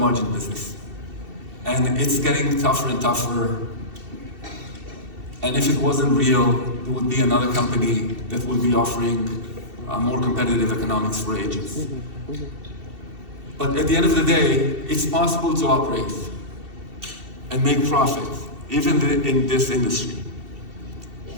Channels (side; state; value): left; late; 2.7 ms